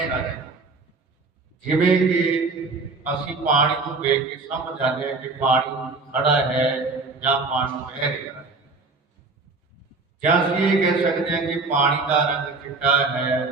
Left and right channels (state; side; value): quieter; left; 3.9 dB